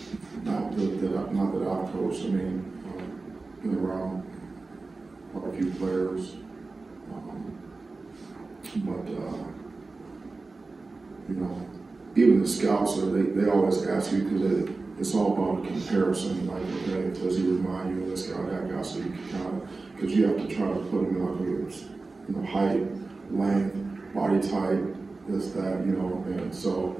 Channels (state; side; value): quieter; left; 3.7 dB